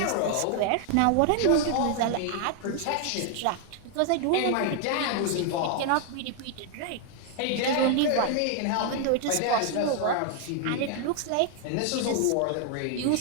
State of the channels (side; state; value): both; different; correlation 0.00